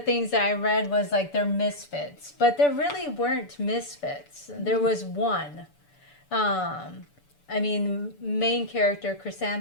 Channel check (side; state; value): right; late; 6.9 ms